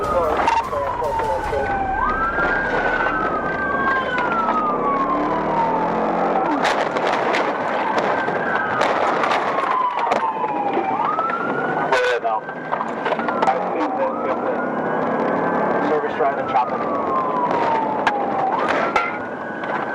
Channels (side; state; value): both; identical; correlation 1.00